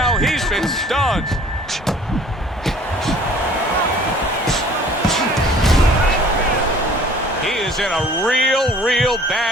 He's been stunned. He is in a real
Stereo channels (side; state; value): both; normal; correlation 0.52